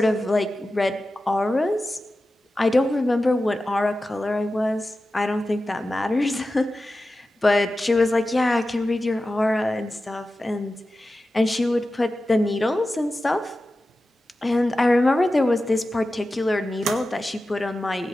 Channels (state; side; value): normal; both; correlation 0.94